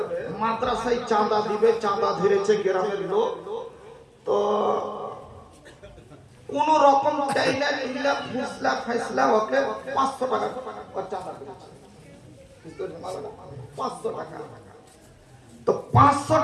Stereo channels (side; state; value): both; identical; correlation 1.00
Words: মাদ্রাসায় চাঁদা দিবে, চাঁদা ধরেছে গ্রামের লোক, তো কোন রকম চাইলা চিল্লা ফুসলা ফাইসলা ওকে 500 টাকা চাঁদা দিয়েছে, 500 টাকা। তো 500